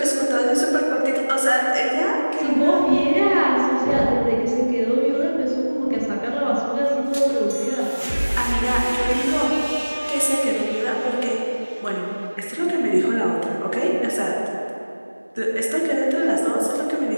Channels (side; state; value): both; inverted; correlation -1.00